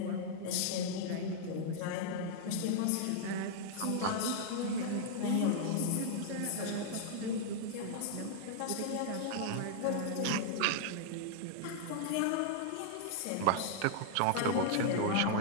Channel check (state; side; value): different; both; correlation -0.01